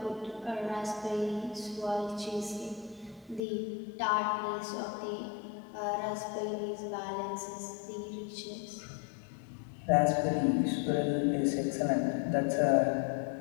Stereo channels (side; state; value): right; drops out; at 3.4 s